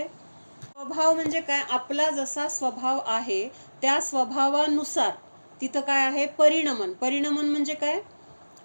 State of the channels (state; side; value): inverted; both; correlation -1.00